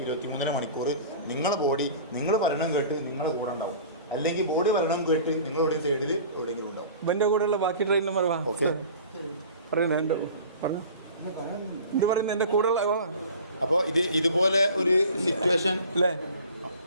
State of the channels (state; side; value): inverted; both; correlation -0.42